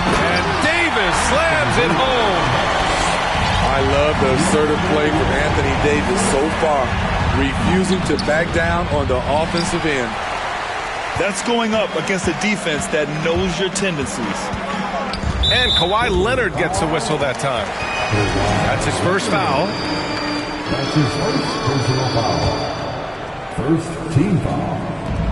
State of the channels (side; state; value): both; identical; correlation 1.00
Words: Davis slams it home. I love the assertive play from Anthony Davis so far, refusing to back down on the offensive end. That's going up against a defense that knows your tendencies. And Kawhi Leonard gets a whistle that time. That's his first foul. That's his first personal foul. First team foul.